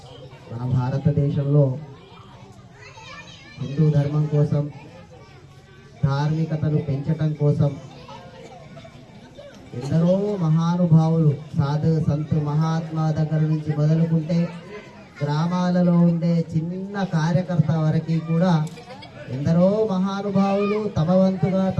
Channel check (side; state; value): both; identical; correlation 1.00